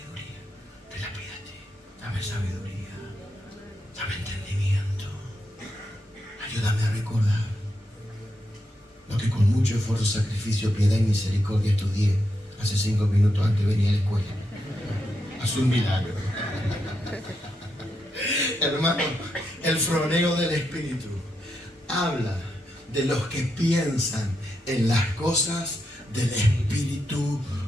te la pide a ti. Dame sabiduría, dame entendimiento. Ayúdame a recordar lo que con mucho esfuerzo, sacrificio, piedad y misericordia estudié hace 5 minutos antes de venir a la escuela. Haz un milagro. Hermano, el froneo del Espíritu habla de los que piensan en las cosas del Espíritu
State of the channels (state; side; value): normal; both; correlation 0.83